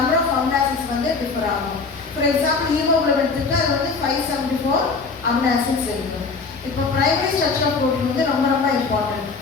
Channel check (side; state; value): right; quieter; 4.4 dB